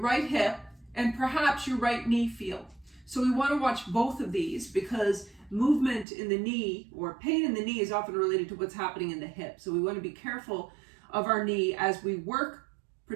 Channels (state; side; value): drops out; left; at 6.1 s